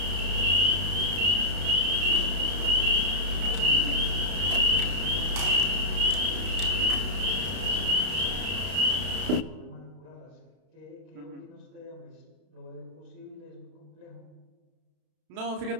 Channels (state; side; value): late; left; 32 ms